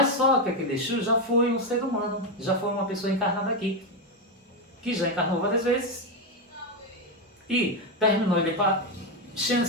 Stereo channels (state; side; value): normal; both; correlation 0.08